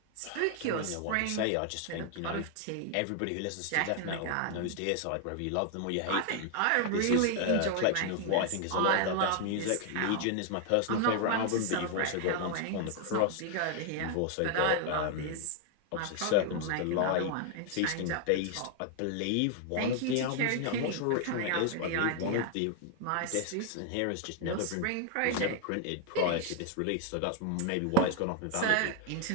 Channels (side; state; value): both; different; correlation 0.00